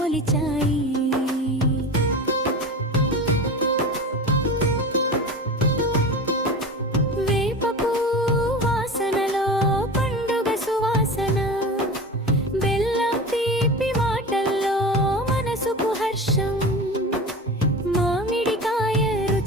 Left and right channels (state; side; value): normal; both; correlation 0.30